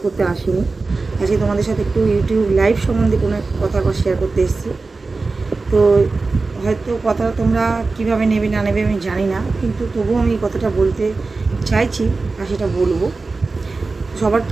করতে আসিনি, আজকে তোমাদের সাথে একটু ইউটিউব লাইভ সম্বন্ধে কোনো কথা শেয়ার করতে এসেছি। তো হয়তো কথা তোমরা কীভাবে নেবে না নেবে আমি জানি না, কিন্তু তবুও আমি কথাটা বলতে চাইছি আর সেটা বলবো। সবার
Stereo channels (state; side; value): quieter; left; 3.8 dB